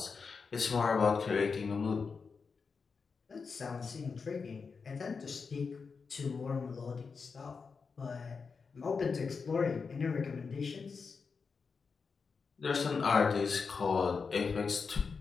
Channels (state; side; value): quieter; right; 5.2 dB